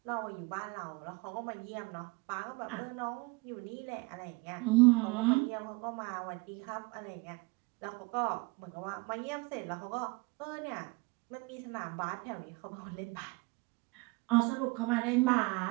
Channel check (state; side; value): quieter; left; 26.1 dB